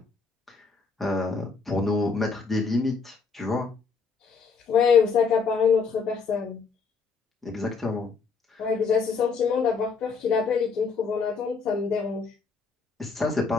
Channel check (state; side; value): quieter; right; 5.1 dB